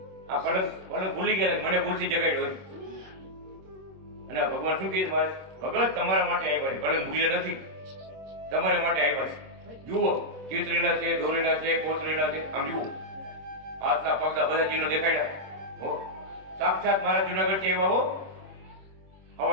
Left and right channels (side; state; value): left; late; 26 ms